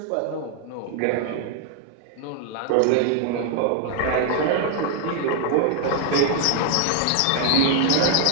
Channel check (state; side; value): different; both; correlation 0.00